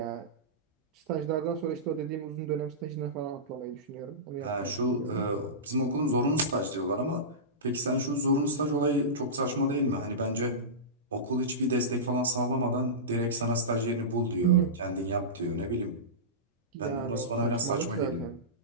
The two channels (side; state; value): both; normal; correlation -0.19